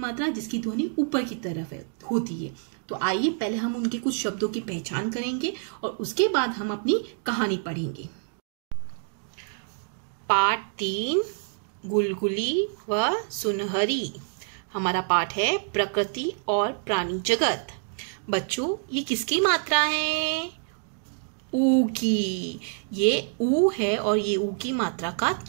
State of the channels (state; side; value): silent; left; 60 dB below the other